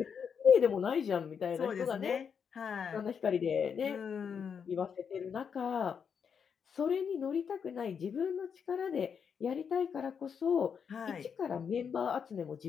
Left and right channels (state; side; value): quieter; right; 6.9 dB